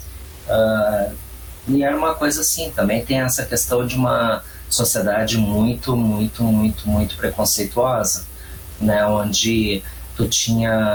E era uma coisa assim, também tem essa questão de uma sociedade muito, muito, muito, muito preconceituosa, né? Onde tu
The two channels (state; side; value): identical; both; correlation 1.00